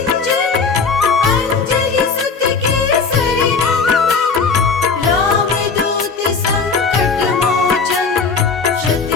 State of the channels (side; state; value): right; quieter; 5.0 dB